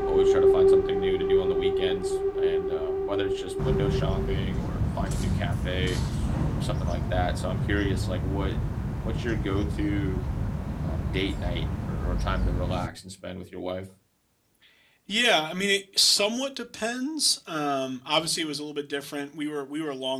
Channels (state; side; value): identical; both; correlation 1.00